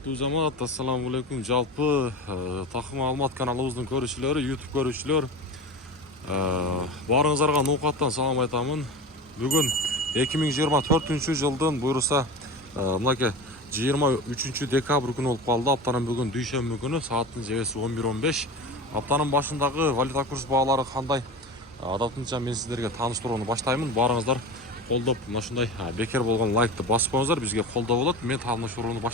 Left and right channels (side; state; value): both; normal; correlation 0.30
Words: жамаат, ассаламу алейкум. Жалпы Такым Алмат каналыбыздын көрүүчүлөрү, YouTube көрүүчүлөр, баарыңыздарга ноокаттан салам айтамын. Бүгүн 2024 жылдын буюрса мынакей 23 декабрь күнү болуп калды. Аптанын бүгүн дүйшөмбү күнү, сааттын жебеси 11:15. Аптанын башындагы валюта курс баалары кандай? Адатынча мен сиздерге тааныштырууну баштаймын. Баарыңыздар колдоп, мына ушундай бекер болгон лайкты басып коюңуздар, бизге колдоо болот. Мен тааныштырууну